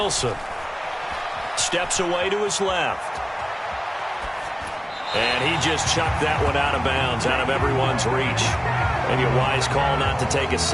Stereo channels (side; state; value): both; identical; correlation 1.00